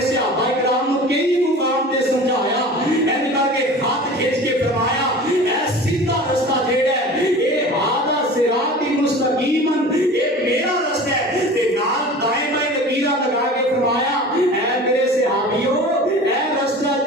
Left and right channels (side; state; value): both; normal; correlation 0.39